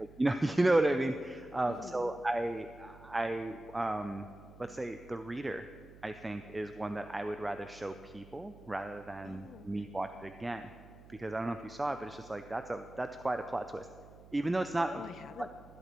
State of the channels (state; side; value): noise; right; hum, 20 dB below the sound